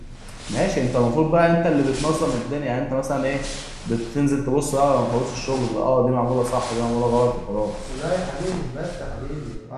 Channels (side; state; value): both; identical; correlation 1.00